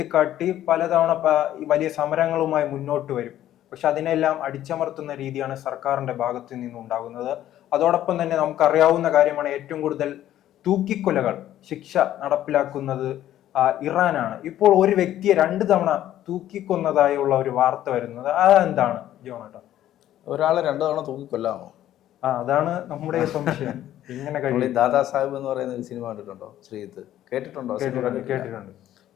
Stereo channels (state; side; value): quieter; right; 12.5 dB